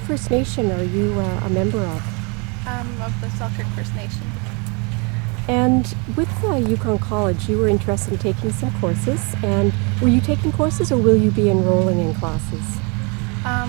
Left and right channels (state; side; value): quieter; left; 32.4 dB